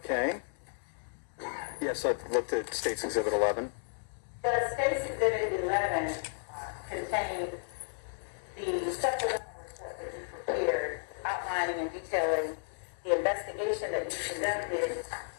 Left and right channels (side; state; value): right; silent; digital silence